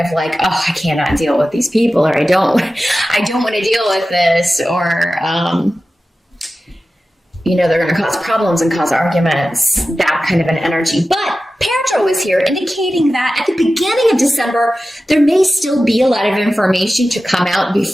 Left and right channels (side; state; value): both; normal; correlation 0.94